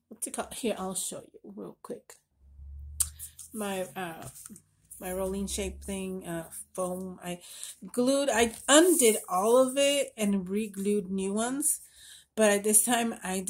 it called? Here, I'll show you real quick. My rolling shape thing, foam. I undid all of it and re-glued new ones, but this time I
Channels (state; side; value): identical; both; correlation 1.00